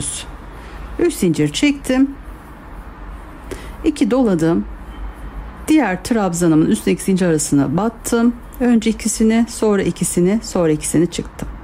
3 zincir çektim. 2 doladım. Diğer trabzanımın üstteki zincir arasına battım. Önce ikisini, sonra ikisini, sonra ikisini çıktım.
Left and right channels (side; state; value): both; identical; correlation 1.00